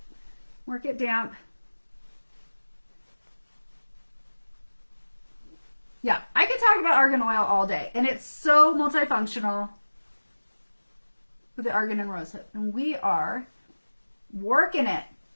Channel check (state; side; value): inverted; both; correlation -1.00